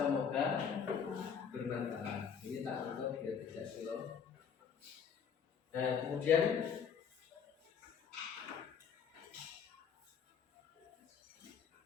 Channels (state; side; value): quieter; right; 7.1 dB